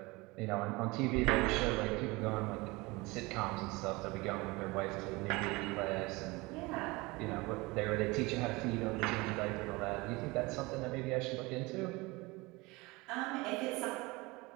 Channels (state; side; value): quieter; left; 23.5 dB